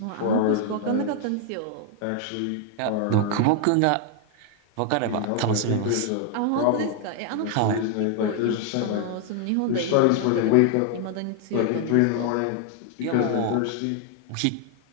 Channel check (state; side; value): different; both; correlation 0.00